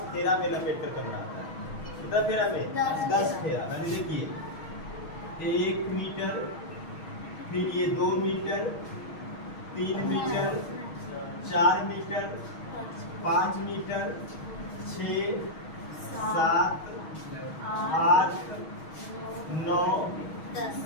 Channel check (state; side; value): late; right; 6.3 ms